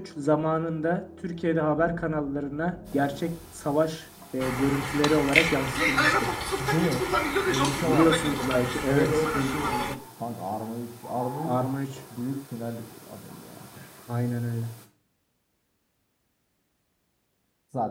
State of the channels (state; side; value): identical; both; correlation 1.00